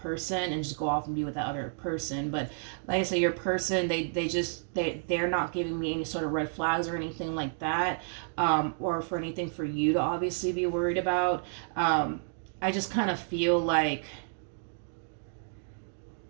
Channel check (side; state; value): left; silent; digital silence